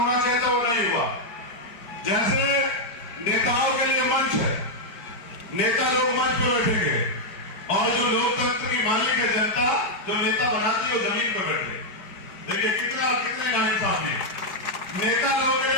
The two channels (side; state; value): right; late; 4.5 ms